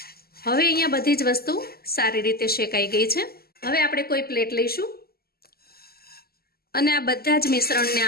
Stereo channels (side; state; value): right; late; 0.45 ms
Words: હવે અહીંયા બધી જ વસ્તુ સારી રીતે શેકાઈ ગઈ છે. હવે આપણે કોઈ પ્લેટ લઈશું અને આ બધા જ મિશ્રણને